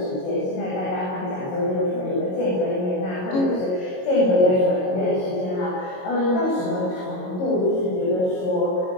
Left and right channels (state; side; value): late; right; 22 ms